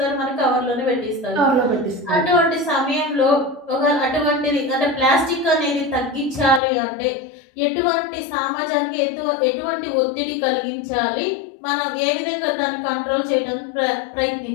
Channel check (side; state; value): right; drops out; at 6.6 s